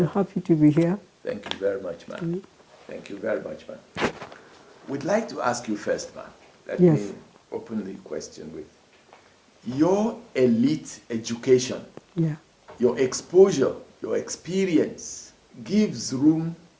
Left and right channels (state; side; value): identical; both; correlation 1.00